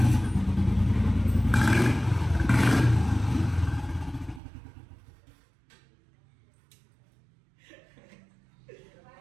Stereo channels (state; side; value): drops out; left; at 4.4 s